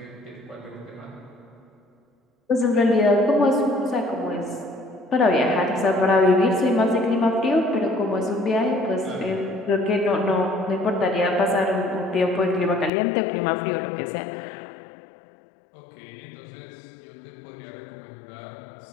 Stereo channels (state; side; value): drops out; right; at 12.9 s